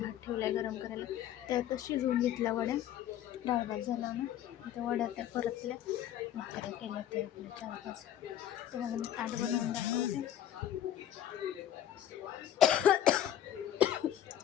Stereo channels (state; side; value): quieter; right; 11.1 dB